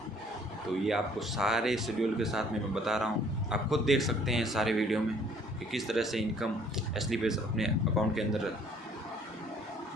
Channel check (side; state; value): both; normal; correlation 0.59